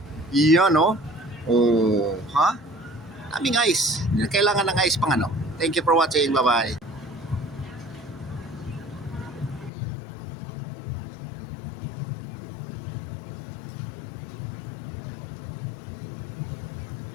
Yan oh. Oh, ha? Daming ice. Kailangan ng ice pang ano. Thank you for watching. Bye-bye.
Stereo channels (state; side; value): drops out; right; at 9.7 s